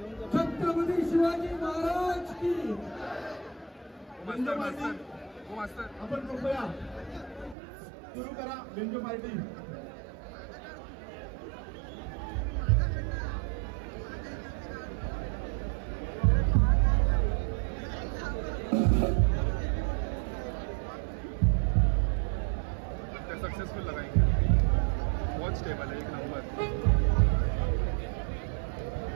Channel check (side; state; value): left; drops out; at 7.6 s